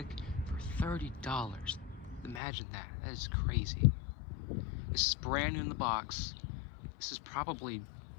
for $30. Imagine that. That is crazy. This is brand new in the box. This is probably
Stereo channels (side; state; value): right; drops out; at 2.4 s